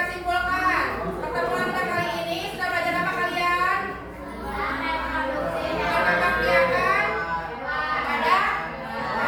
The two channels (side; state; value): both; identical; correlation 1.00